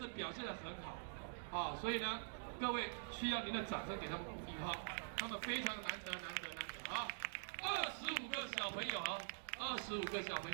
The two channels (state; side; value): silent; left; digital silence